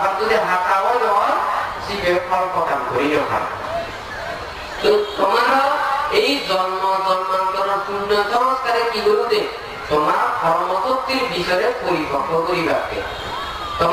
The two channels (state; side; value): identical; both; correlation 1.00